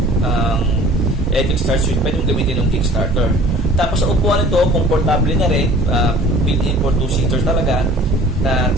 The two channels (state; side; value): normal; both; correlation 0.48